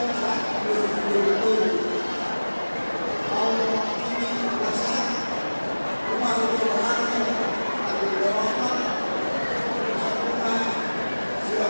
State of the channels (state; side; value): inverted; both; correlation -1.00